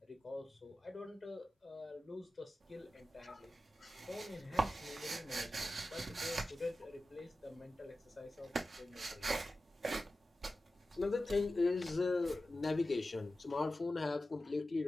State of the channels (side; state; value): both; normal; correlation 0.94